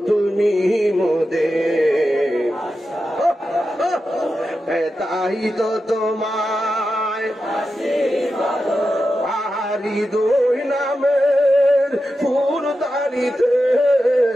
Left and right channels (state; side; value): normal; both; correlation 0.90